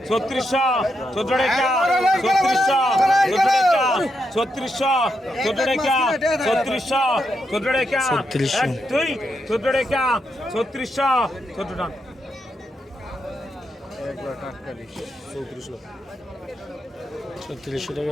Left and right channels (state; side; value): normal; both; correlation 0.83